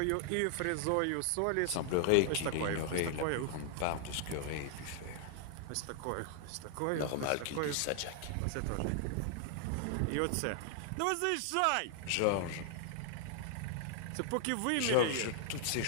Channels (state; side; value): different; both; correlation 0.00